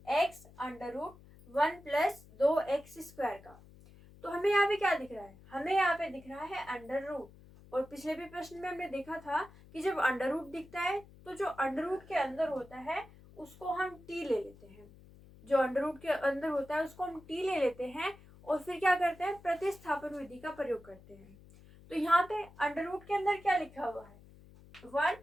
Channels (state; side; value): noise; left; hum, 22 dB below the sound